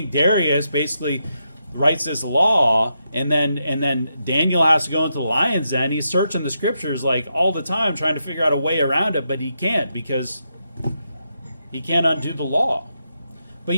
Darius basically writes this law, and then Daniel has to go into the lion's den, he's searching the scriptures all the time, trying to figure out a way around it, but he can't because he can't undo the law. But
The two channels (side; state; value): both; inverted; correlation -0.83